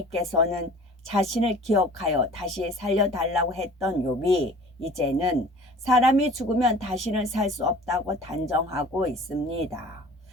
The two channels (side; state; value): both; normal; correlation 0.45